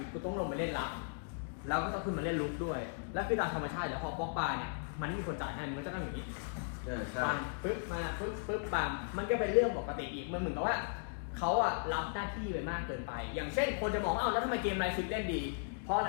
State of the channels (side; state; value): right; silent; digital silence